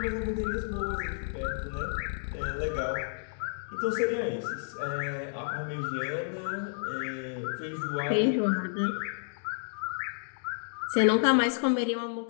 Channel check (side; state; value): right; silent; digital silence